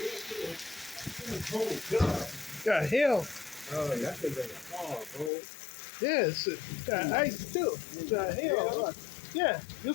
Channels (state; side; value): drops out; right; at 5.3 s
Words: Got hail. Oh, that thing like a fall, bro. Yeah, it's got ice too. It's got hail. Look. Yeah, you'll